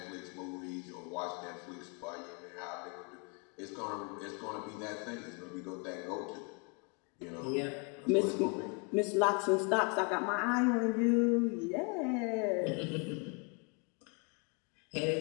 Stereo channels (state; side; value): quieter; right; 32.8 dB